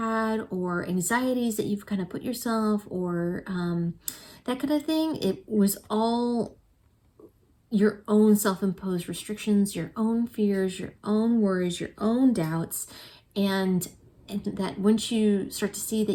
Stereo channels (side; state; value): both; identical; correlation 1.00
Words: or anxieties that you've kind of put yourself or that kind of thing, it was all your own self-imposed restrictions, your own fears, your own worries, your own doubts, and that once you start to see